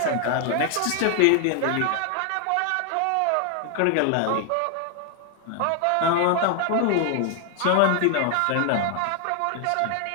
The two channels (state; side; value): different; both; correlation 0.00